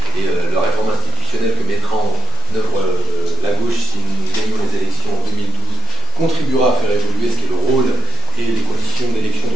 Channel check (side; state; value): both; normal; correlation 0.38